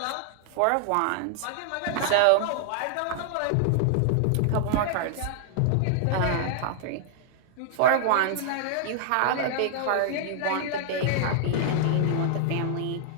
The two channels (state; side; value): different; both; correlation -0.01